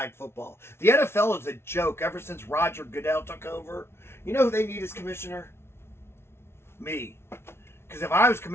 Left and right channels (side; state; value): right; late; 0.12 ms